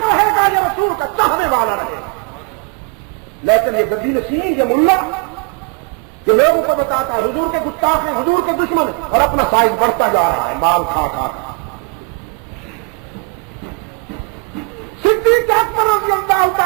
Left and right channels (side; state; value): left; quieter; 30.9 dB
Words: رہے گا یا رسول کا چاہنے والا رہے گا۔ لیکن یہ گدی نشین، یہ ملا یہ لوگوں کو بتاتا ہے حضور کے گستاخ ہیں، حضور کے دشمن، اور اپنا سائز بڑھتا جا رہا ہے مال کھا کھا۔ صدیق اکبر رضی اللہ